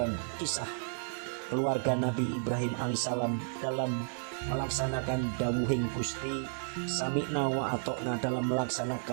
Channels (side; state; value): left; silent; digital silence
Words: kisah keluarga Nabi Ibrahim alaihissalam dalam melaksanakan dawuhing Gusti, sami'na wa atokna, dalam